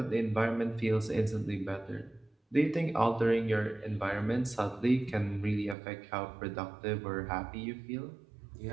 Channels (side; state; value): left; drops out; at 5.8 s